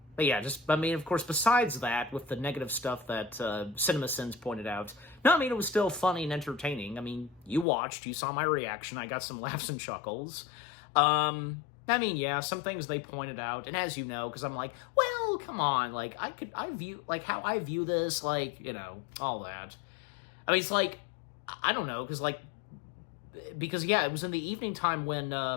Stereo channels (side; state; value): right; drops out; at 7.7 s